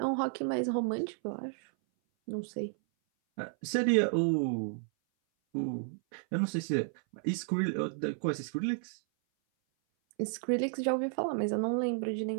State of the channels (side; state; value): left; silent; 56 dB below the other